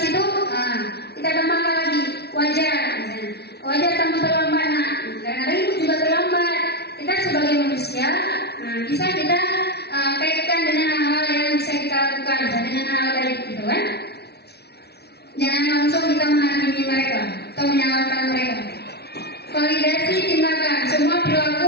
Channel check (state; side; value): late; right; 0.48 ms